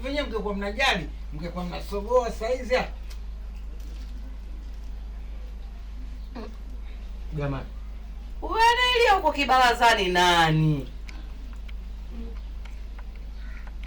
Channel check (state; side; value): identical; both; correlation 1.00